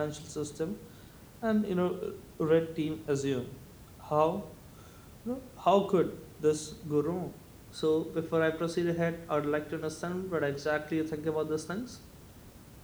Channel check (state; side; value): identical; both; correlation 1.00